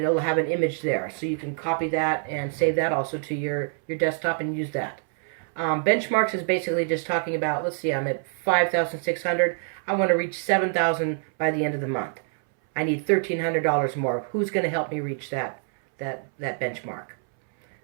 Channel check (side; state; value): left; silent; 61 dB below the other